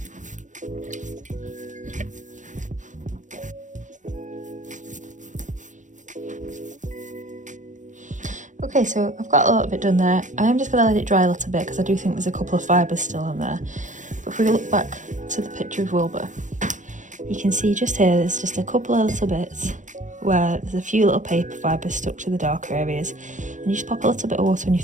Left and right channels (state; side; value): late; left; 0.36 ms